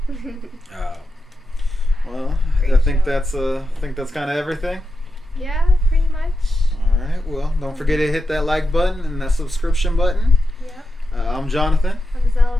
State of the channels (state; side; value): normal; both; correlation 0.88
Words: Oh. Well, Great I think show. that's kind of everything. Yeah, pretty much. All right. Well, don't forget to hit that like button and that subscription button. Yep. I'm Jonathan. I'm